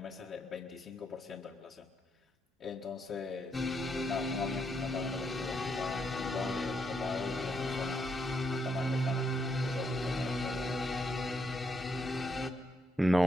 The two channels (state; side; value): normal; both; correlation 0.78